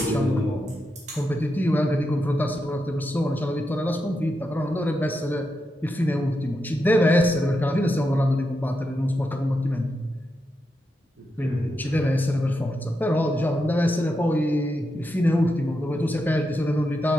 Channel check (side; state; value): both; normal; correlation 0.86